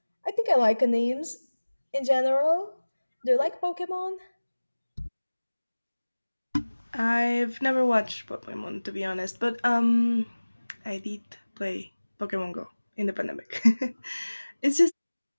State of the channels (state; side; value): inverted; both; correlation -1.00